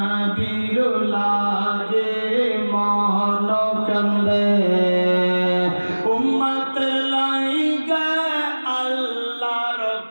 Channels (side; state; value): both; inverted; correlation -1.00